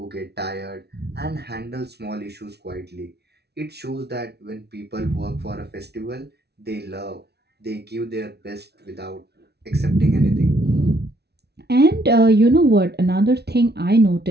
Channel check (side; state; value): left; late; 0.48 ms